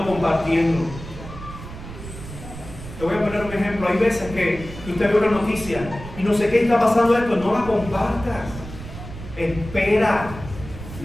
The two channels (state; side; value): noise; right; rumble, 12 dB below the sound